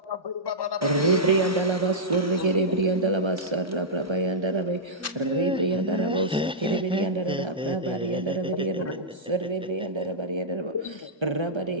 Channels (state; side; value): normal; both; correlation -0.12